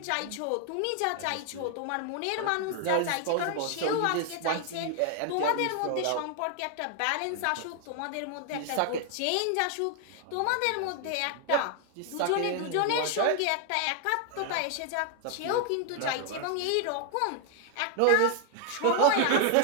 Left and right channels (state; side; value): different; both; correlation 0.00